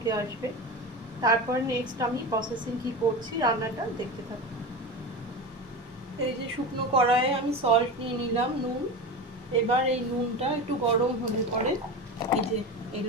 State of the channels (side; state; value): both; normal; correlation 0.24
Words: আসবে। তারপর নেক্সট আমি প্রসেসিং কি করছি, রান্নাটা দেখতে থাকবো। এই যে শুকনো কড়াইয়ে আমি সল্ট নিয়ে নিলাম, নুন। এবার এই নুনটা একটু গরম হলে পরে এই যে